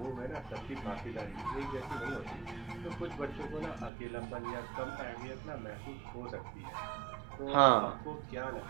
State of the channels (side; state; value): left; drops out; at 3.9 s